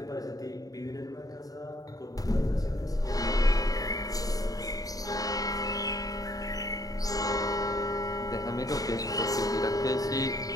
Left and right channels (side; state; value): right; late; 0.18 ms